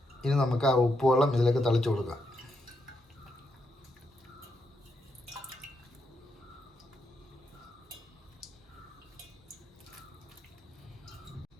ഇനി നമുക്ക് ആ ഉപ്പ് വെള്ളം ഇതിലേക്ക് തളിച്ച് കൊടുക്കാം.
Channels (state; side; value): normal; both; correlation 0.81